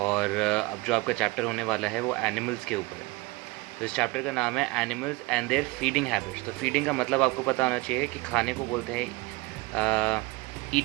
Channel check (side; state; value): left; quieter; 22.8 dB